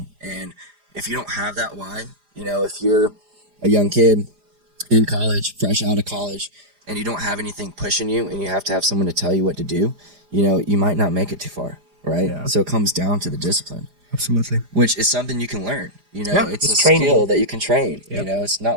And if you don't have that why, if you're a young kid in college, fresh out of college, and you don't have anything pushing you and you have to have someone to tell you what to do, you might not make it too far, right? Yeah. So it comes down to the discipline. Absolutely. Which is something you can learn. You know, Yeah, it's a it's skill trainable. that you can train. You Yep. know, it's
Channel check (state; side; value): late; left; 4.9 ms